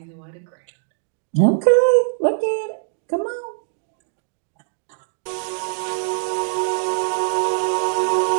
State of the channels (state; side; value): silent; left; digital silence